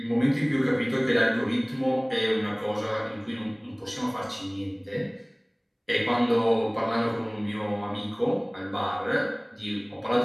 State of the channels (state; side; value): identical; both; correlation 1.00